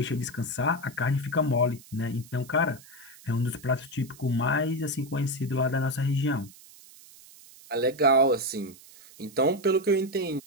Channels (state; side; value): noise; right; hiss, 22 dB below the sound